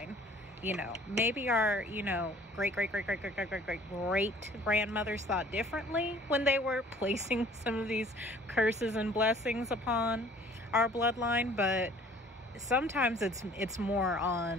You know, maybe our, you know, great grandmothers thought differently when they were placing some of these curses and blessings upon our bloodline, but sometimes it's more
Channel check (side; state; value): both; normal; correlation 0.53